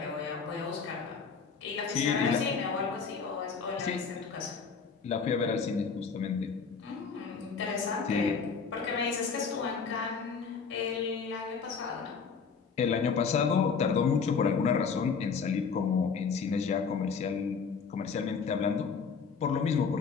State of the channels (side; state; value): right; quieter; 5.6 dB